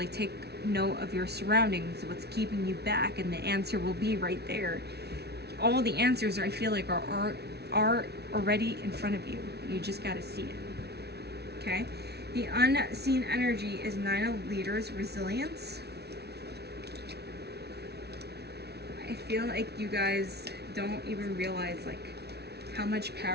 take note of your surroundings, what's keeping you back, and the answer will be right there. All the answers, I feel like, are already in front of you. You just got to see it. Okay? The unseen energy is 9 of Leaders, resilience. I feel like you guys don't even realize like how much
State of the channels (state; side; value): late; left; 0.48 ms